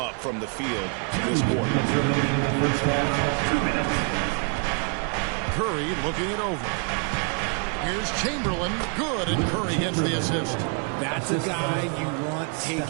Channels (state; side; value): quieter; left; 38.1 dB